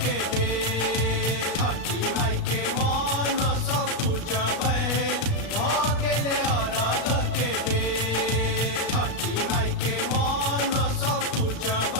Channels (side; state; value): right; late; 35 ms